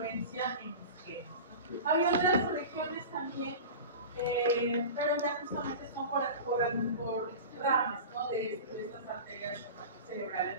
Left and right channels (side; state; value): both; inverted; correlation -0.32